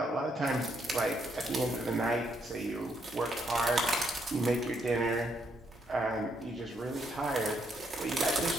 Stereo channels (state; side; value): normal; both; correlation 0.75